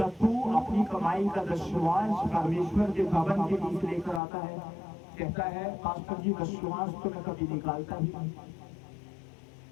तू अपनी कमाई का दशमांश परमेश्वर के भवन के बीच लेकर आता है? कहता है, पास्टर जी दशमांश तो मैं कभी निकालता ही नहीं।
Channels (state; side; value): drops out; right; at 4.2 s